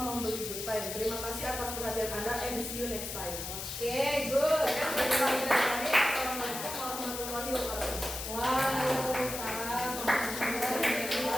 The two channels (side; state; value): left; noise; hiss, 6 dB below the sound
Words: good time. Terima kasih atas perhatian Anda and see you next time. Oke, good. Assalamualaikum warahmatullahi wabarakatuh. Waalaikumsalam warahmatullahi